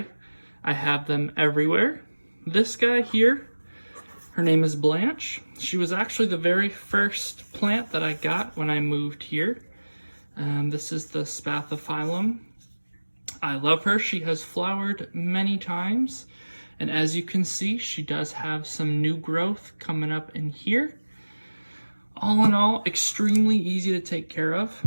I have them everywhere. This guy here, her name is Blanche. She was actually the very first plant that I got when I moved here. This is the Spathiphyllum. I love her. She has flowered many times, and as you can see, she does have some new growth coming up in here. All in all, extremely easy to take care of.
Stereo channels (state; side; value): inverted; both; correlation -1.00